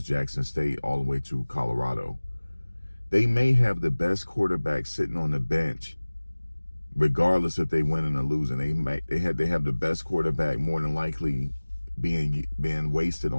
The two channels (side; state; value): both; inverted; correlation -1.00